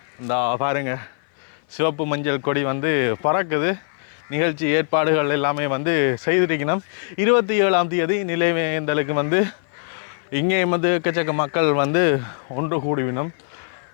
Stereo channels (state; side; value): silent; right; 57 dB below the other